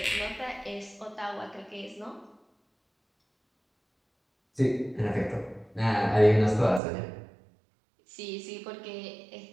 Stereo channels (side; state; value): left; drops out; at 6.8 s